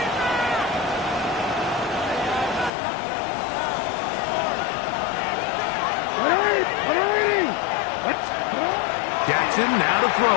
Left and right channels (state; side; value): drops out; right; at 2.7 s